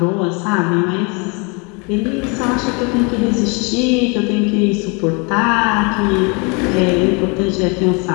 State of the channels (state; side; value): quieter; right; 31.4 dB